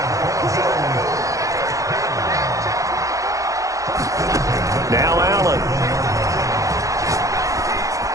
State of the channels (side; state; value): left; late; 0.16 ms